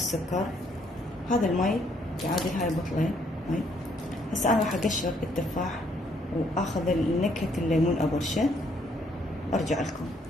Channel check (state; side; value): normal; both; correlation 0.68